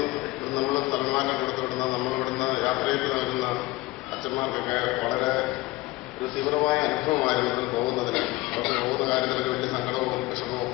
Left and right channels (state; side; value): quieter; right; 19.9 dB